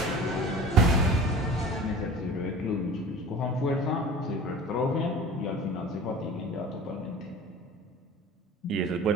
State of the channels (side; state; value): both; normal; correlation 0.41